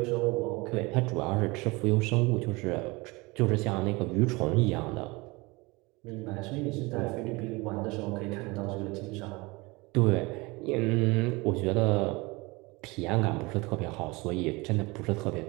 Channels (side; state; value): left; quieter; 24.5 dB